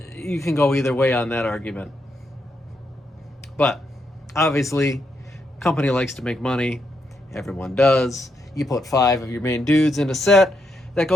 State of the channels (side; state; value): both; normal; correlation 0.80